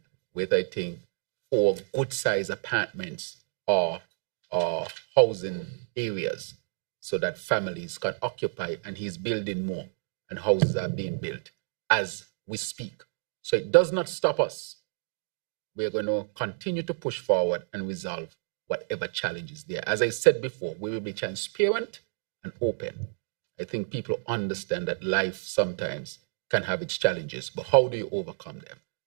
with, I think, 4 good-sized apartments or housing areas so that families can occupy, and he's building more, and houses are being built as we speak. So it does not stop us. We're going to continue to push forward and resolve whatever challenges there. As I said before, we will be transparent and open. I think people understand that life sometimes can have its challenges, but how do you overcome them?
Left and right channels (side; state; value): left; silent; digital silence